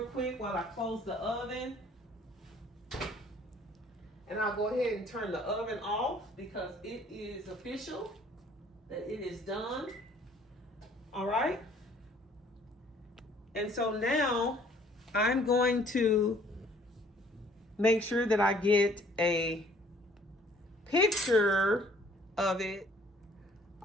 quick while I close the oven. And I'll go ahead and turn the oven off because it is official that it is done. All right. And so now I'm going to make sure that I get a picture of it.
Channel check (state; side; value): normal; both; correlation 0.58